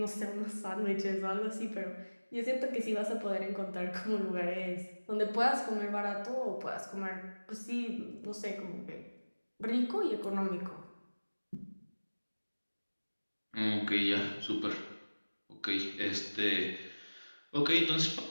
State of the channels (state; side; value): inverted; both; correlation -1.00